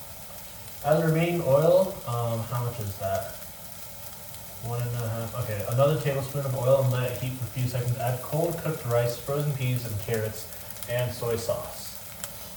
As remaining oil, how much is that? 1.5. Okay, another tablespoon of oil and let it heat for a few seconds. Add cold cooked rice, frozen peas, and carrots, and soy sauce.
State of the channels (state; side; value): identical; both; correlation 1.00